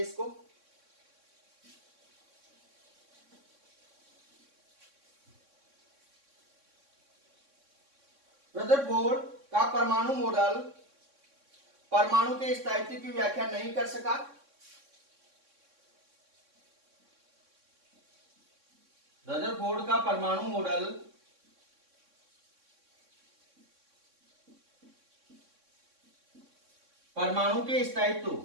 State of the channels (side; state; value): left; late; 3.6 ms